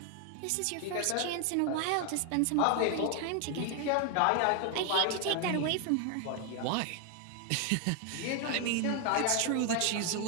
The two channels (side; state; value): both; different; correlation 0.01